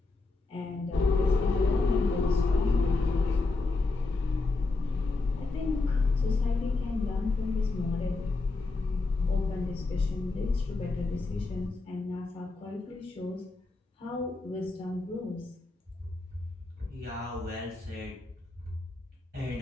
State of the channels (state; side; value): quieter; right; 3.5 dB